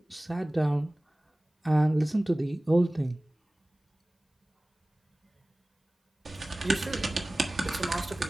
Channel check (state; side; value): normal; both; correlation 0.98